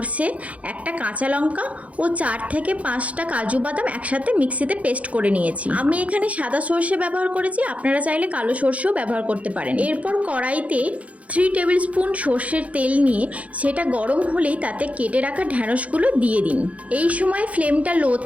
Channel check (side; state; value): left; late; 0.066 ms